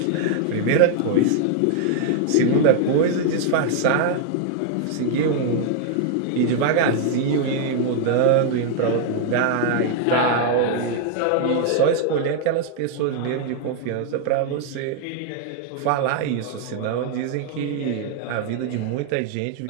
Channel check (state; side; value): different; both; correlation 0.00